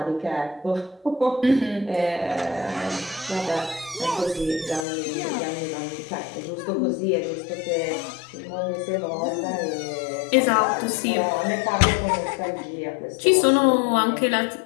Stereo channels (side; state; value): right; drops out; at 4.9 s